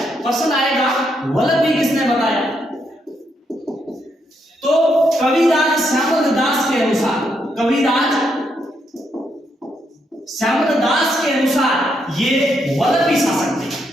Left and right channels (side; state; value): both; normal; correlation 0.78